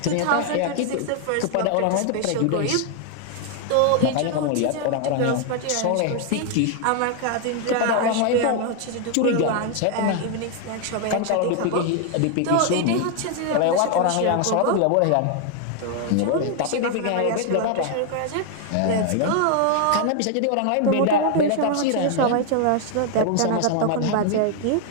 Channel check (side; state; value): both; different; correlation 0.00